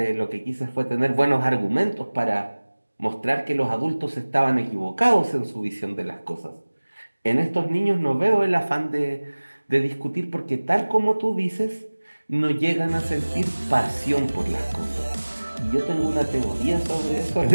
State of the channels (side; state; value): both; inverted; correlation -1.00